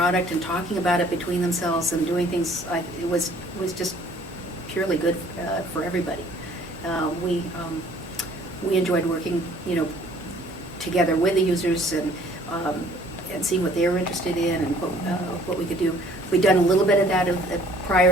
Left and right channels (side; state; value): both; normal; correlation 0.56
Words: and talking about it between themselves and doing things, it was just purely good for everybody. We enjoyed working, together with the users and seeing what they were interested in and what we could do. We'd done a little bit of that